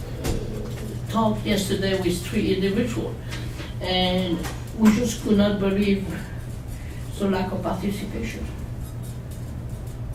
talk yesterday with 3 individuals, and we just could not believe the lack of participation.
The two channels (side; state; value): both; identical; correlation 1.00